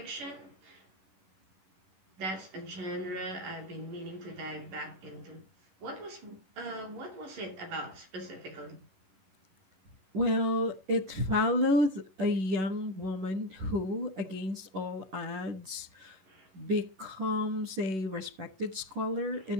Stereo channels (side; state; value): left; late; 11 ms